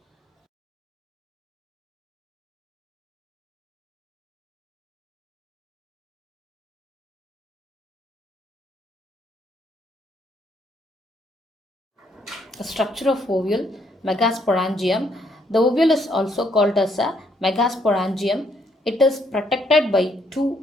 The structure of ovule, megasporangium. The ovule is also called as a megasporangium. It is protected by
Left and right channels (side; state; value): both; normal; correlation 0.71